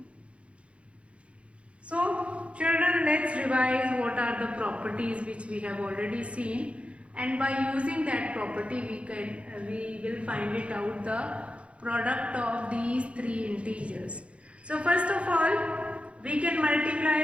So children, let's revise what are the properties which we have already seen, and by using that property we will find it out the product of these three integers. So first of all, we can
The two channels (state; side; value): late; left; 0.061 ms